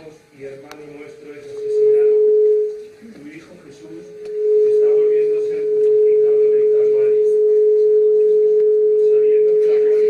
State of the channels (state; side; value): identical; both; correlation 1.00